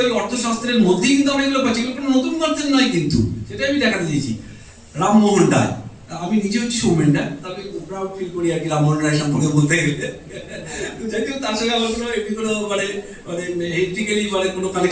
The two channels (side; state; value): both; identical; correlation 1.00